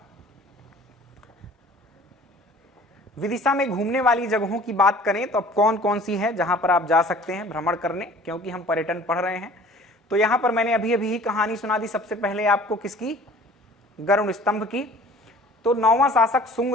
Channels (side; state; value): both; normal; correlation 0.49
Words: विदिशा में घूमने वाली जगहों की बात करें तो अब कौन कौन सी है जहां पर आप जा सकते हैं भ्रमण करने, क्योंकि हम पर्यटन पढ़ रहे हैं। तो यहां पर मैंने अभी अभी ही कहानी सुना दी सबसे पहले आपको, किसकी, गरुड़ स्तंभ की। तो 9वां शासक सुंग